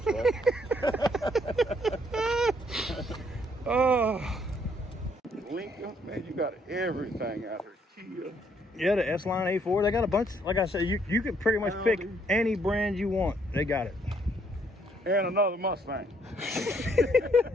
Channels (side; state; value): both; normal; correlation 0.68